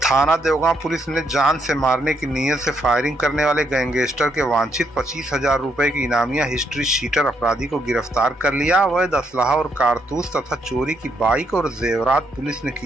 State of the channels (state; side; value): normal; both; correlation 0.75